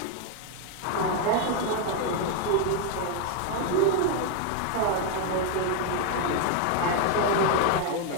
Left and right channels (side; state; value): both; different; correlation 0.01